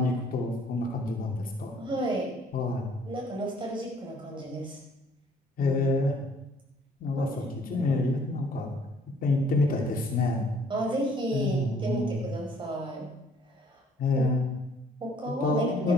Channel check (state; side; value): normal; both; correlation 0.60